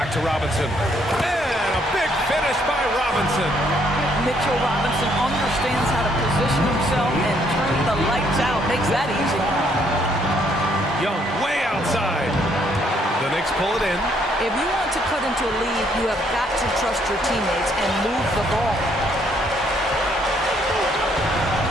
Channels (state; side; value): normal; both; correlation 0.69